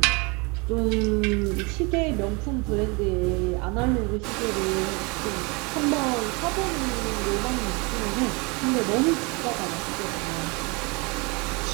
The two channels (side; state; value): left; quieter; 29.0 dB